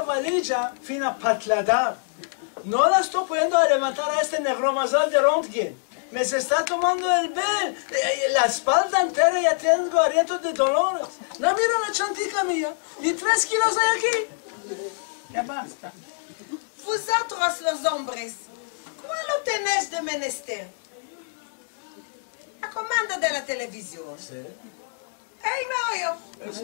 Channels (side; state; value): right; silent; digital silence